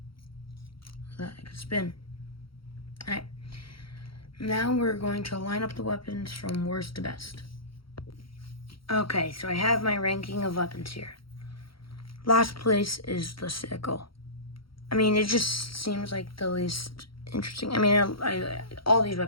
that it can spin. Alright. Now we're going to line up the weapons from worst to best. Okay, so I have my ranking of weapons here. Last place is the sickle. I mean, it just seems like the least interesting. I mean, all these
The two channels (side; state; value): right; late; 0.74 ms